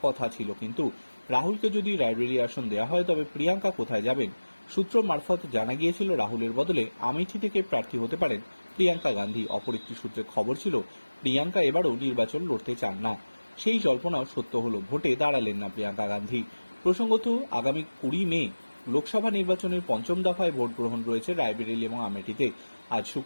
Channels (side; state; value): both; inverted; correlation -1.00